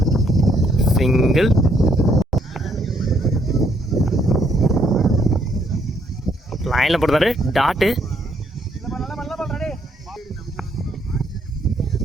சிங்கிள். லைனில் போடுறாரு டாட்டு.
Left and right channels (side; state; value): both; normal; correlation 0.71